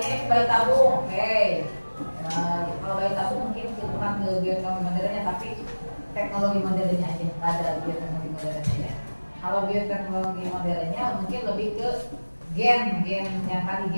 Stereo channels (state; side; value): inverted; both; correlation -1.00